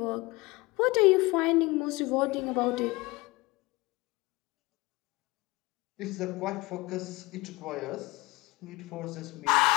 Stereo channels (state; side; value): quieter; right; 22.5 dB